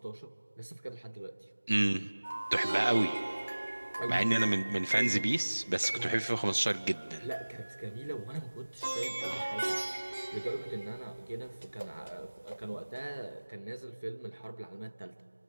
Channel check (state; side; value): inverted; both; correlation -1.00